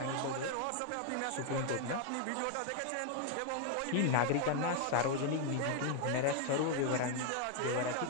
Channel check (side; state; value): both; different; correlation 0.01